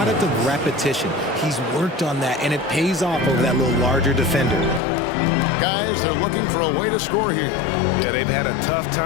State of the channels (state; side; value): drops out; right; at 4.8 s